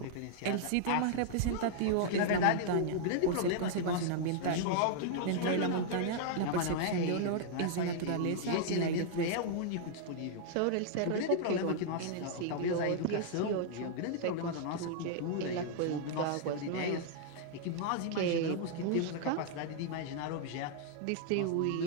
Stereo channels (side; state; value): both; different; correlation -0.01